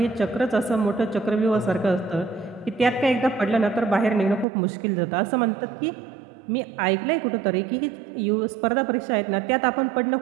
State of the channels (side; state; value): left; drops out; at 4.5 s